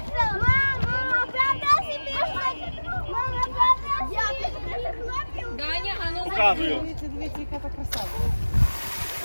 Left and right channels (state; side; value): inverted; both; correlation -1.00